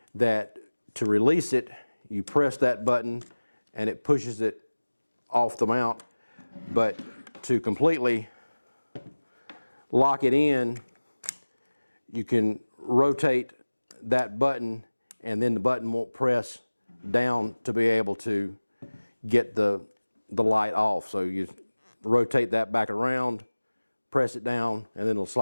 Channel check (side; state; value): both; inverted; correlation -1.00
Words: that, to release it, you press that button and it pushes it off the mount. But to completely lock it in, you can rotate that button, and then the button won't press down to be able to get the light off. So you rotate that back around, press it down, and then it'll